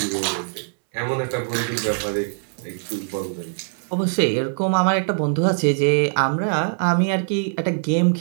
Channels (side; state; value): left; silent; 64 dB below the other